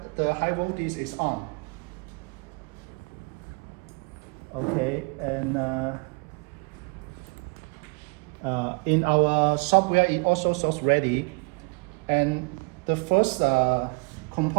high voltage is on. Okay, and in our software it also shows ready. And the first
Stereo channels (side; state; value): left; quieter; 31.9 dB